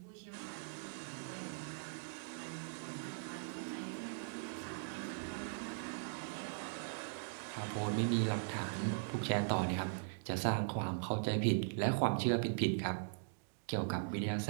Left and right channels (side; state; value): left; silent; digital silence